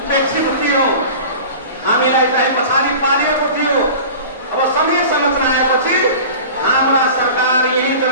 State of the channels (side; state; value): both; inverted; correlation -0.37